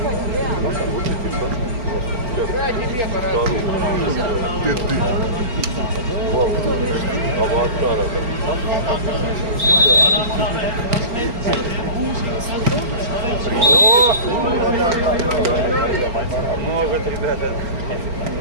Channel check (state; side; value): late; left; 4.3 ms